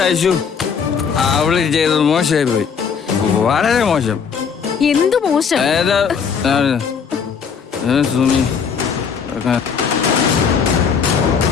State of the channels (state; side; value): quieter; right; 6.5 dB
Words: അയച്ചു അവള് ചെയ്തത് മോശമായി പോയി, വളരെ മോശം. എന്തു മോശം? സുമി